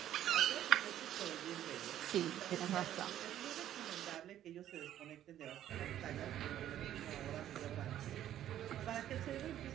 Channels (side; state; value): left; quieter; 11.7 dB